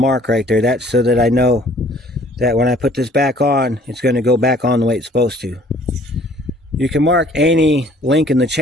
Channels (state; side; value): normal; both; correlation 0.56